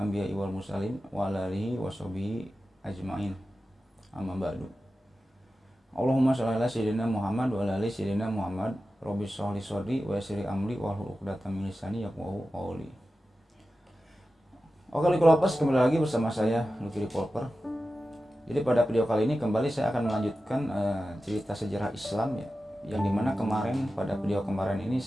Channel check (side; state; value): both; normal; correlation 0.93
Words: wal mursalin wa ala alihi washabihi ajmain. Amma ba'du. Allahumma shalli ala sayyidina Muhammad wa ala ali sayyidina Muhammad. Rabbi shrah li sadri wa yassir li amri wahlul 'uqdatam min lisani yafqahu qawli. Oke, Lucky, kembali lagi bersama saya Lucky Revolver. Jadi pada video kali ini kembali saya akan melanjutkan cerita sejarah Islam ya, yang dimana pada video kemarin ini